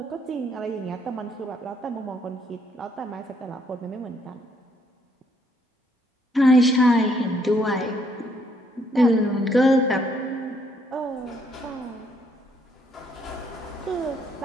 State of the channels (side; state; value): both; normal; correlation 0.69